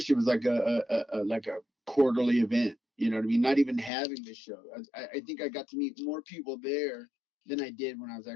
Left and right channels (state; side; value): drops out; right; at 3.9 s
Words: it was like a quarterly event. You know what I mean? Not even having the show. I think I got to meet more people there than I did when I was